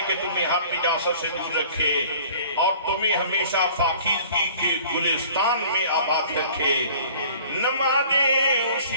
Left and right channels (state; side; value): inverted; both; correlation -0.50